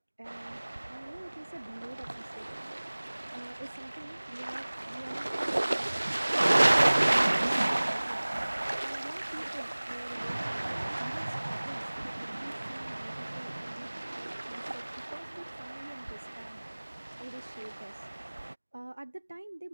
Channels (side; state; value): both; inverted; correlation -1.00